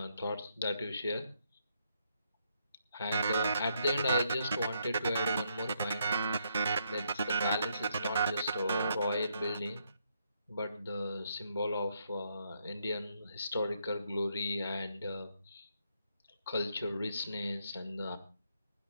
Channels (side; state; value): both; inverted; correlation -0.75